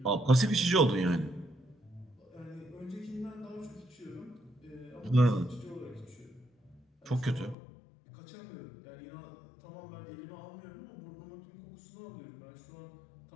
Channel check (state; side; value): drops out; right; at 7.6 s